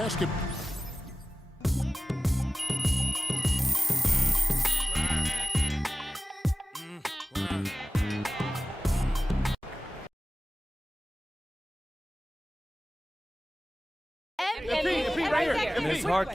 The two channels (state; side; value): normal; both; correlation 0.96